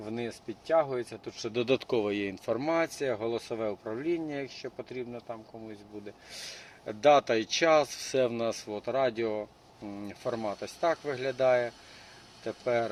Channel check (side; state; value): both; identical; correlation 1.00